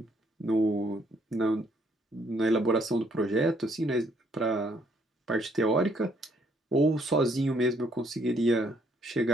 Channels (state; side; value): normal; both; correlation 0.68